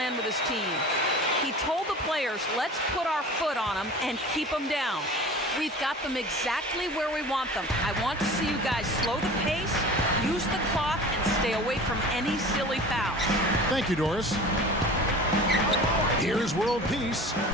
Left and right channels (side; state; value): both; normal; correlation 0.39